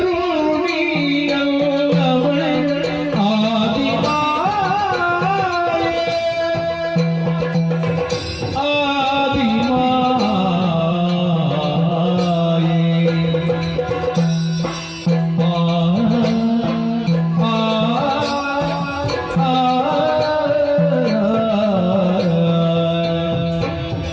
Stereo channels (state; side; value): identical; both; correlation 1.00